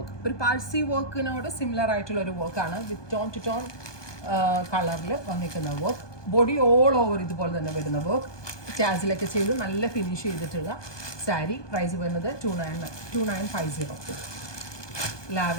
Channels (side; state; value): right; late; 1.2 ms